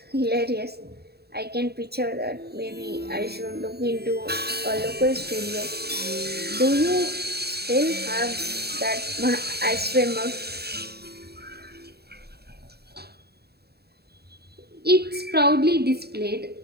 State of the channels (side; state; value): left; late; 0.47 ms